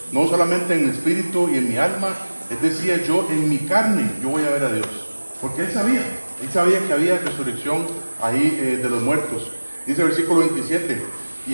No solamente en mi espíritu y en mi alma, él decía, yo en mi carne yo voy a ver a Dios. Porque él sabía que había resurrección ahí de los muertos. Dice el versículo 27,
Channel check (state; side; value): inverted; both; correlation -1.00